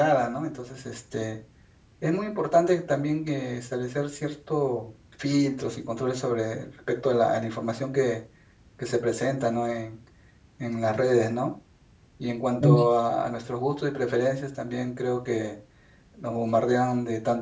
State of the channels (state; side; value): identical; both; correlation 1.00